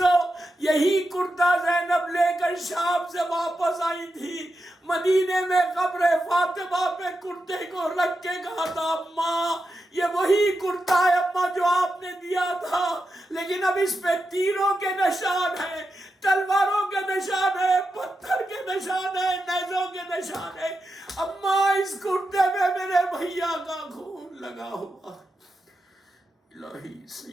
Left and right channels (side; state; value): both; normal; correlation 0.88